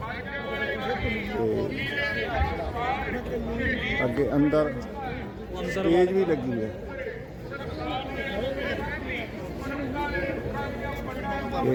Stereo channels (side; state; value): both; identical; correlation 1.00